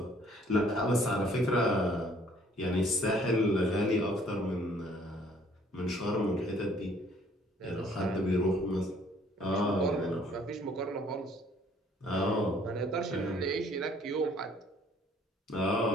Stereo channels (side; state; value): both; normal; correlation 0.59